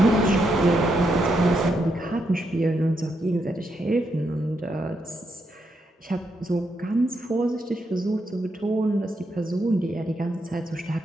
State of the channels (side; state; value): both; normal; correlation 0.80